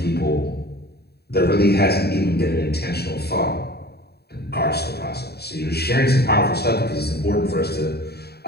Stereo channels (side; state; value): right; late; 0.47 ms